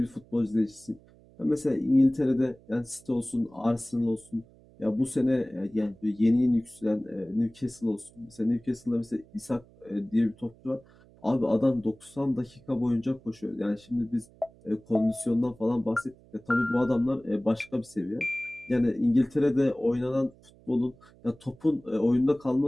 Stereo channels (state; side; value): noise; right; hum, 26 dB below the sound